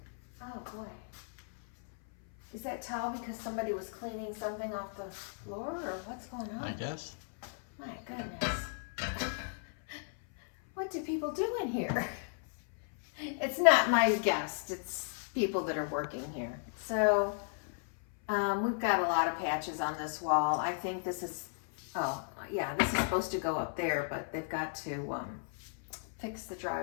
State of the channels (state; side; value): silent; right; 54 dB below the other